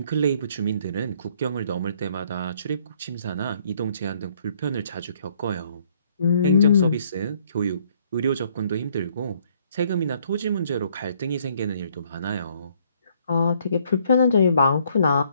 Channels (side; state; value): both; inverted; correlation -0.65